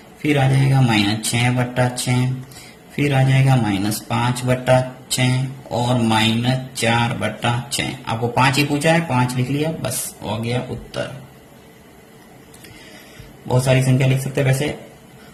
फिर आ जाएगा -6/6, फिर आ जाएगा -5/6 और -4/6। आपको 5 ही पूछा है, 5 लिख लिया, बस हो गया उत्तर। बहुत सारी संख्या लिख सकते हैं वैसे।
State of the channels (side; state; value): both; identical; correlation 1.00